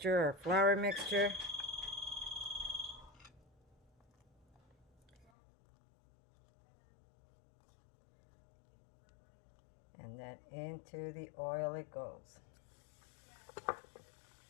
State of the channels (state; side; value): drops out; right; at 5.3 s